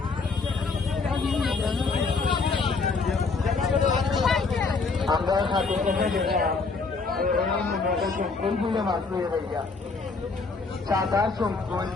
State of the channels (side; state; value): right; quieter; 4.3 dB